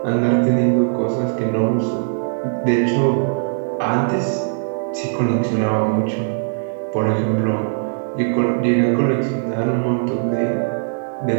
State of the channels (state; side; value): silent; left; digital silence